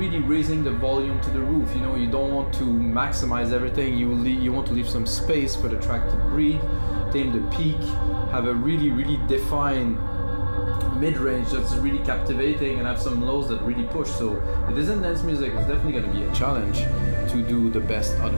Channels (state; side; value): inverted; both; correlation -1.00